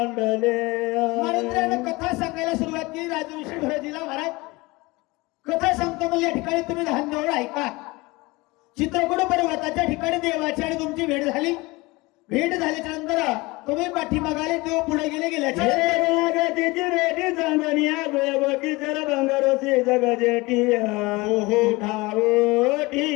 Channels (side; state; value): right; quieter; 23.0 dB